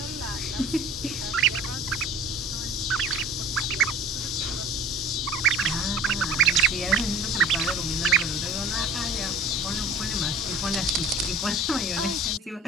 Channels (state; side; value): normal; both; correlation 0.42